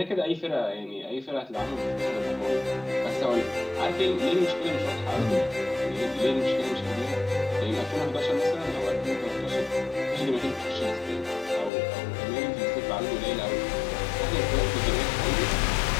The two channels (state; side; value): drops out; right; at 11.7 s